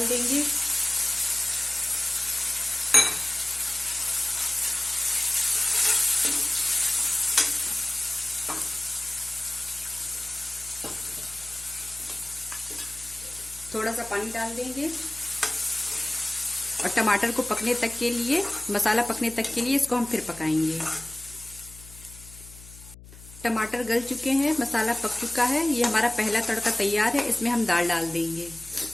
देंगे। थोड़ा सा पानी डाल देंगे और टमाटर को पकने तक के लिए, मसाला पकने तक के लिए इसको हम फिर पकाएंगे। टमाटर गल चुके हैं, मसाला पक चुका है, ये हमारा पहला तड़का तैयार है। इसमें हम दाल डाल देंगे।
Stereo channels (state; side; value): noise; left; hum, 18 dB below the sound